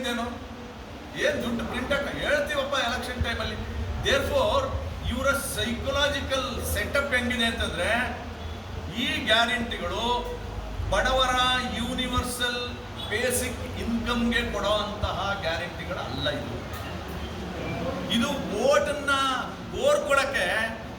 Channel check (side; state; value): both; identical; correlation 1.00